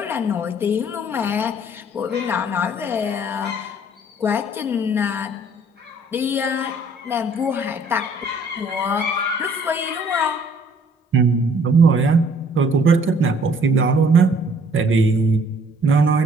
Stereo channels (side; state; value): both; normal; correlation 0.58